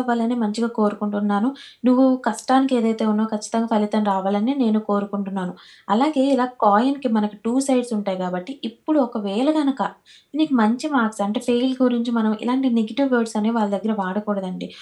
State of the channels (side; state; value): both; identical; correlation 1.00